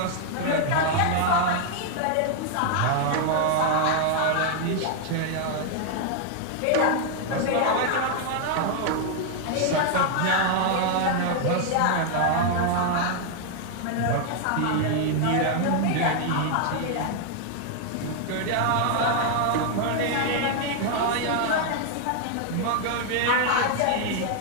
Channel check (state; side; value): different; both; correlation 0.00